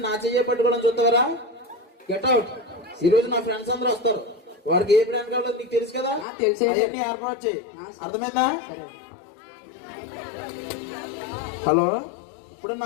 నా చెయ్యి పట్టుకోవడం చూస్తావరా? Get out. ఈ రోజు నా ఫ్రెండ్స్ అందరూ వస్తారు, వారికి ఏ బ్రాండ్ కావాలో నీకు తెలుసు కదా. తెలిసే ఏర్పాటు చేయి. అర్థమైందా? హలో, ఇప్పుడు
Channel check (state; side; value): drops out; right; at 6.2 s